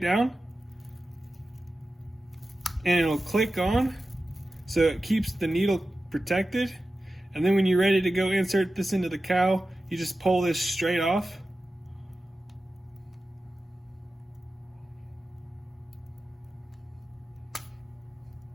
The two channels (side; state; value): both; normal; correlation 0.94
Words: down, and it'll click on, so it keeps the needle protected. And then when you're ready to go insert this into the cow, you just pull this straight off.